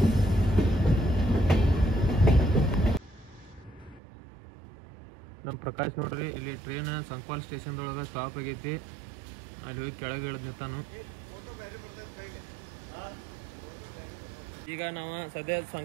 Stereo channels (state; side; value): drops out; left; at 4.0 s